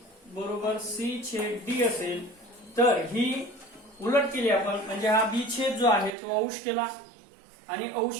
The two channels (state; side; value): drops out; left; at 6.2 s